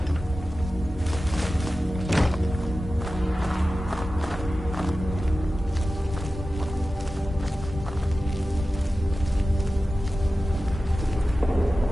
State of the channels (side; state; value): both; normal; correlation 0.95